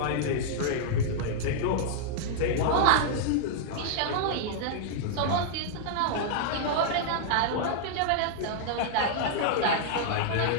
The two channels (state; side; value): different; both; correlation -0.01